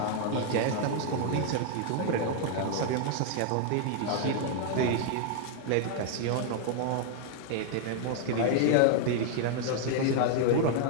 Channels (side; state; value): both; different; correlation 0.00